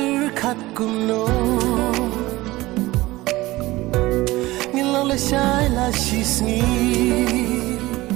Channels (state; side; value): quieter; left; 19.0 dB